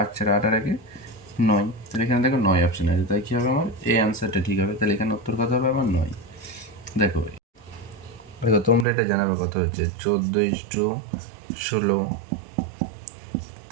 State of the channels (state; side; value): drops out; left; at 8.8 s